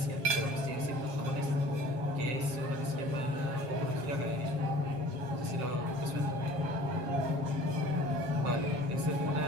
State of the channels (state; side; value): late; left; 7.2 ms